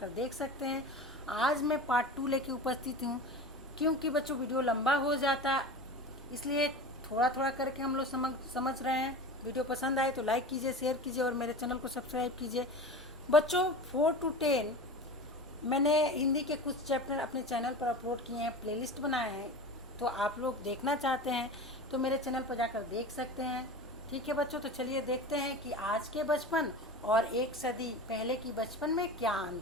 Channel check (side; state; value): both; normal; correlation 0.32